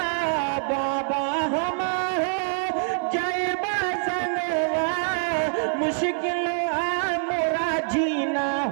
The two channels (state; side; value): silent; left; digital silence